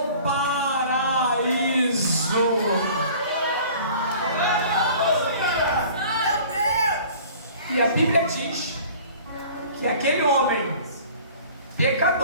paraíso. Meu Deus! E a Bíblia diz que aquele homem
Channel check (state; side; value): inverted; both; correlation -0.47